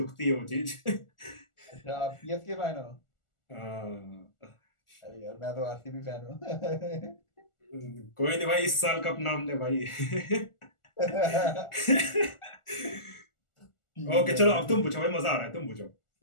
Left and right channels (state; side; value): late; right; 1.4 ms